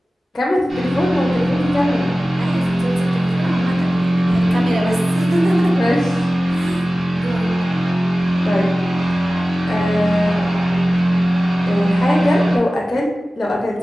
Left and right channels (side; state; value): both; normal; correlation 0.96